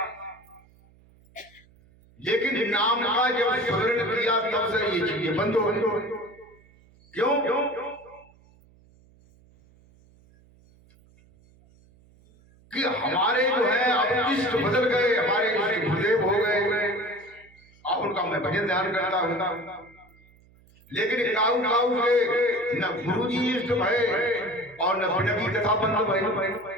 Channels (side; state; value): right; noise; hum, 29 dB below the sound